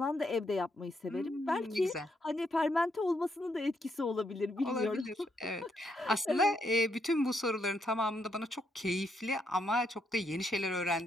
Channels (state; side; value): normal; both; correlation 0.77